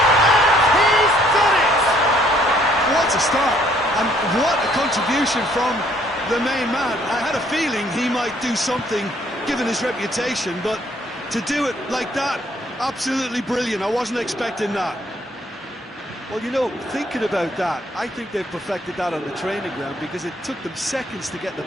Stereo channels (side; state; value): both; normal; correlation 0.64